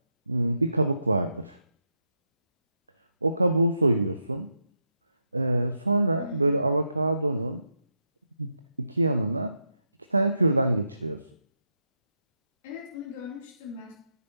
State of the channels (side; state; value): both; inverted; correlation -0.86